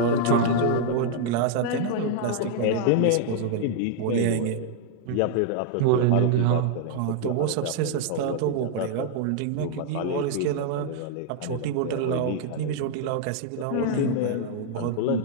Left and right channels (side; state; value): both; different; correlation 0.00